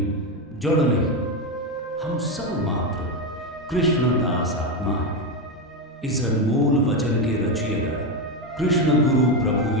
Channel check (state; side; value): normal; both; correlation 0.11